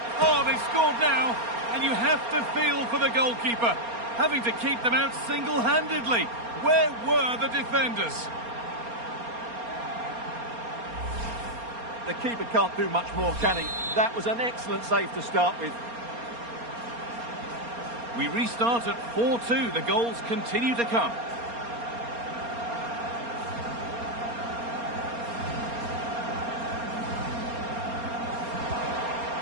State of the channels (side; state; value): left; late; 4.3 ms